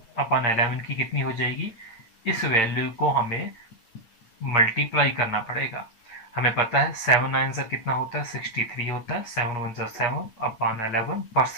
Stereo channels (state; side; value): late; right; 8.9 ms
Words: की कितनी हो जाएगी, इस वैल्यू को हमें मल्टीप्लाई करना पड़ेगा। हमें पता है 7 9 से कितना होता है, 63 होता है। 7 1